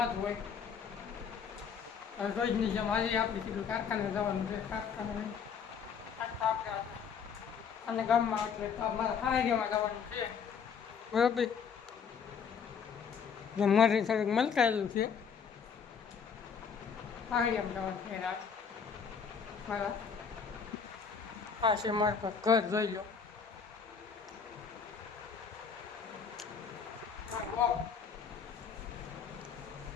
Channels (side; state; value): right; quieter; 6.6 dB